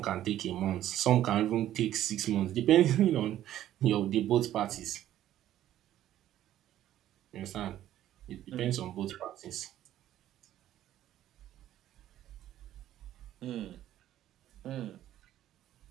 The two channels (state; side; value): quieter; left; 12.6 dB